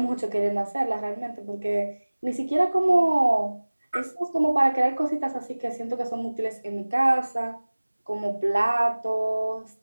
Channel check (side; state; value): both; inverted; correlation -1.00